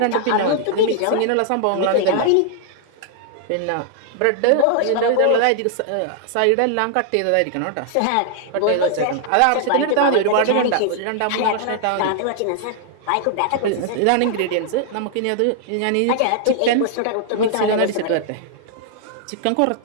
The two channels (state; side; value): different; both; correlation -0.01